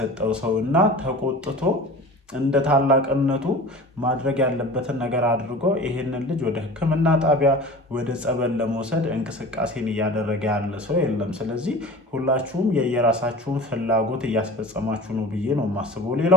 ሰውና ተቆጥቶ እንደ ታላቅነቱ ማድረግ ያለበትን ነገር አድርጎ ይሄንን ልጅ ወደ ሕክምና ጣቢያ ወደ ጸበል ለመውሰድ እንቅስቃሴን እያደረገ ያለ ሰው የለም። ስለዚህ ሁላችሁም የየራሳችሁን ፍላጎት እያስፈጸማችሁ ነው ብዬ ነው የማስበው።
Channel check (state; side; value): normal; both; correlation 0.38